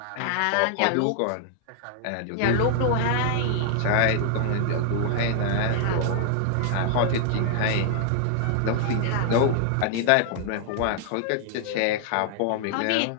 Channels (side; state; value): both; different; correlation 0.00